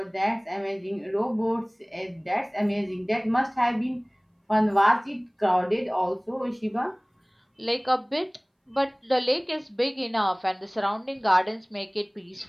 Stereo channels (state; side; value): identical; both; correlation 1.00